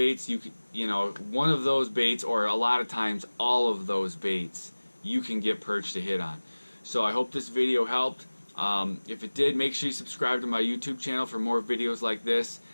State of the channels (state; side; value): inverted; both; correlation -1.00